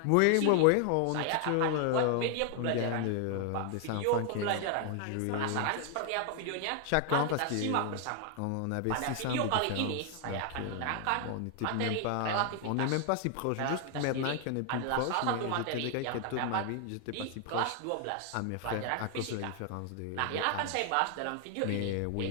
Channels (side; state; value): both; different; correlation 0.00